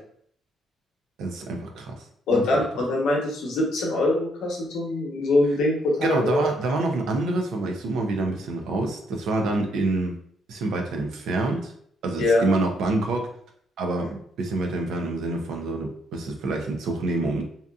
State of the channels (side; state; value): both; normal; correlation 0.72